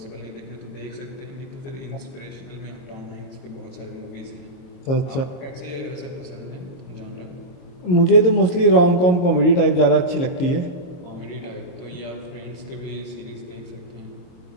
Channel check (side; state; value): right; late; 22 ms